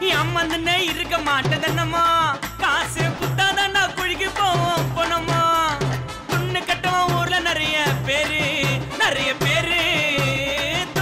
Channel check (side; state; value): both; identical; correlation 1.00